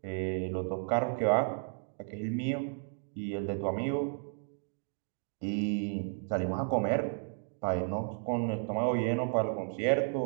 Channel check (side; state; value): left; silent; 56 dB below the other